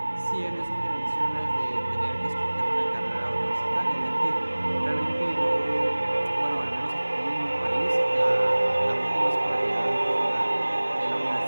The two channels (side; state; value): both; inverted; correlation -1.00